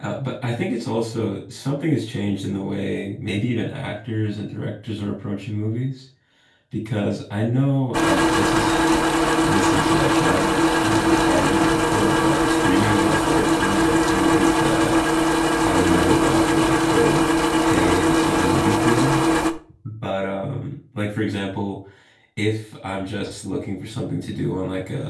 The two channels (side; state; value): both; identical; correlation 1.00